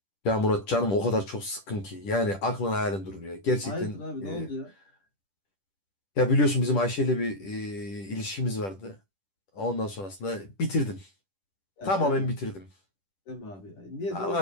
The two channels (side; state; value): right; late; 10 ms